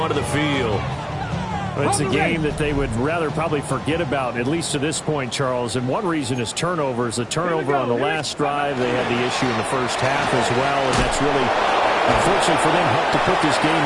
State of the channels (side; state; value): both; identical; correlation 1.00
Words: the field. It's a game that they would rather probably forget about, at least to this point, Charles. And one reason is turnovers. The turnover on the last drive, they had the issue in the first half as well, and that's really, unfortunately for them, helped to put this game